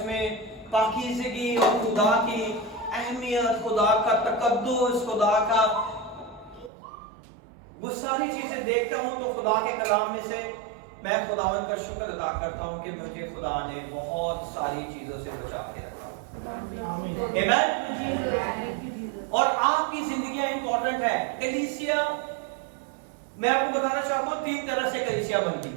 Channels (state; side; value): drops out; left; at 6.7 s